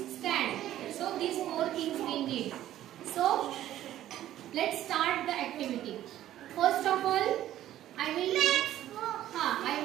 stand. So these four things we need. So let's start the activity. First of all, I will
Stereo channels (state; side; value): quieter; left; 12.9 dB